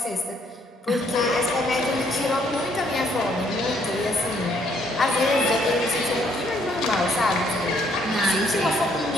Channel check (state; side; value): normal; both; correlation 0.68